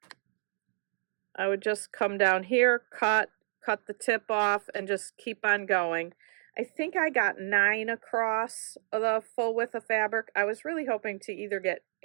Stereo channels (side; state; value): left; silent; 58 dB below the other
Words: I would just come down here, cut the tip off, and just keep on going. I think I got 9 across the full width of fabric. I was really hoping to either get